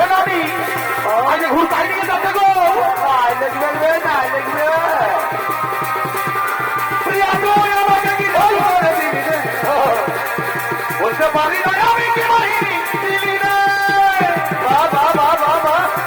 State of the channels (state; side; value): identical; both; correlation 1.00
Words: আজকে ঘুর তাই নিয়ে যাচ্ছে গো, দেখবে না দেখবে। প্রিয়া তুই আমাকে কি জাদু করে দিলি রে? বুঝতে পারি নাই আমি কি বাহিনী দিলি রে। বাবা বাবা বাবা